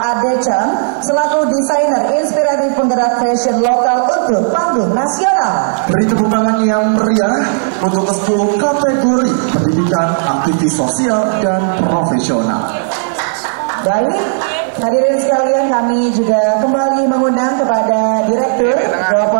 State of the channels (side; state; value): left; silent; digital silence